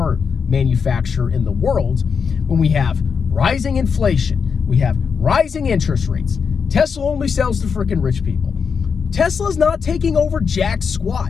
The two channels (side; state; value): right; quieter; 6.0 dB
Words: manufacturer in the world when we have rising inflation? We have rising interest rates. Tesla only sells to freaking rich people. Tesla's not taking over jack